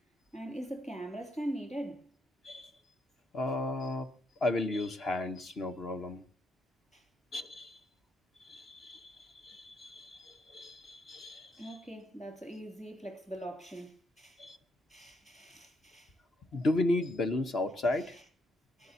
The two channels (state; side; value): normal; both; correlation 0.76